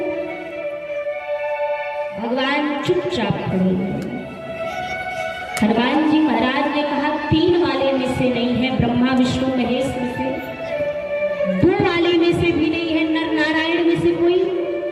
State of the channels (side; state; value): both; identical; correlation 1.00